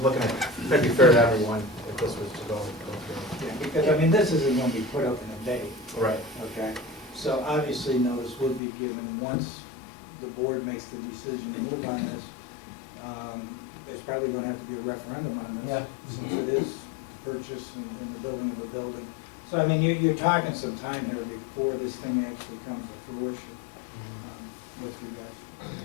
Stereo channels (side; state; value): right; drops out; at 8.6 s